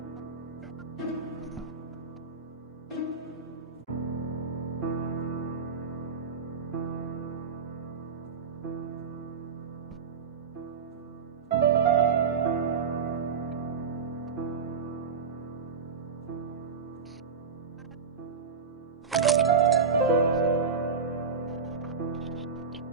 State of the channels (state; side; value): quieter; left; 5.7 dB